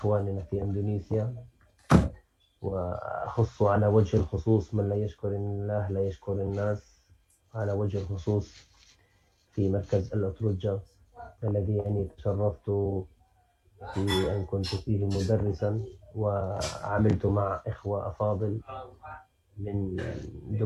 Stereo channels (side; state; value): both; identical; correlation 1.00